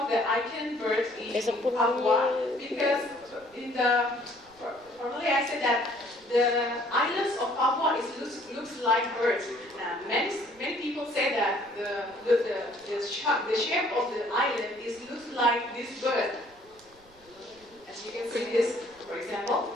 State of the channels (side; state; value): right; noise; rumble, 29 dB below the sound